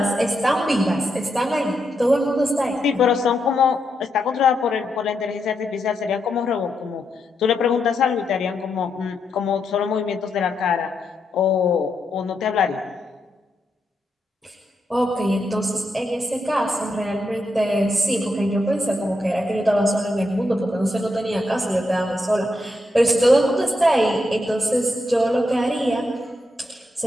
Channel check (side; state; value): both; normal; correlation 0.82